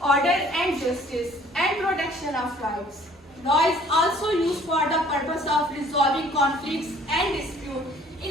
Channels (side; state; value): both; normal; correlation 0.56